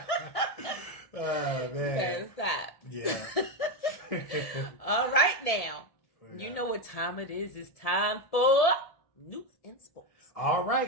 Oh, man. You gotta stop. Yeah. All right, now. Yeah. You know what time it is. It's time for news and sports. All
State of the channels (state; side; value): late; right; 1.7 ms